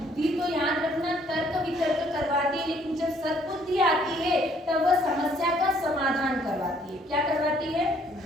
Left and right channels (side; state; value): both; normal; correlation 0.63